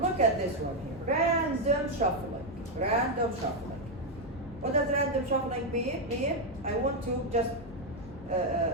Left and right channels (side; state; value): both; normal; correlation 0.03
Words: look at this one here. Random shuffling. Random shuffling. What does random shuffling mean? I want to just